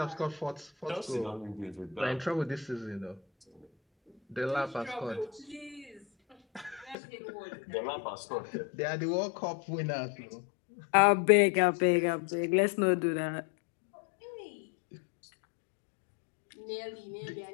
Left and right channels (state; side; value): drops out; right; at 7.0 s